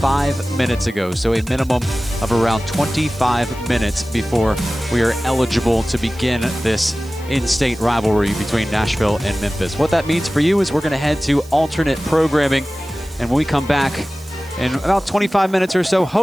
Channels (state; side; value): noise; right; hiss, 22 dB below the sound